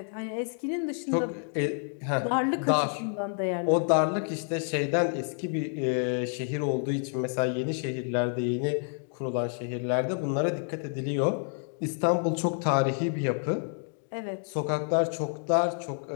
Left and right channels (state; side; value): silent; right; 55 dB below the other